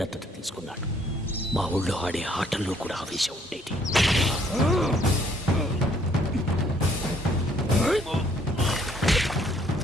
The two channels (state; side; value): normal; both; correlation 0.65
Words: దత్తత తీసుకున్నాడు. మా ఊళ్ళో ఆడే ఆటల్లో కూడా ఆవేశం ఉండేది.